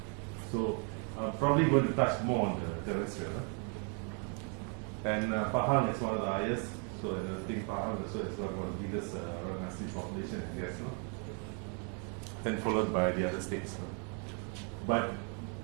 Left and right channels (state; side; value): quieter; left; 37.4 dB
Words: So I'm probably going to touch more on the terrestrial. And Pahang is one of the highest, so I think Pahang also is one of the biggest orang asli population, I guess. Then followed by the other states. But